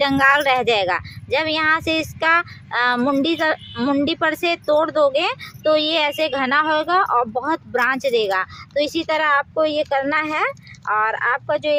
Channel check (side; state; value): both; identical; correlation 1.00